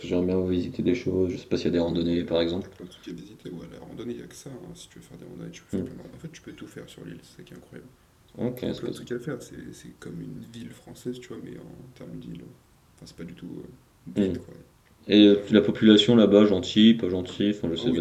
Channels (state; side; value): identical; both; correlation 1.00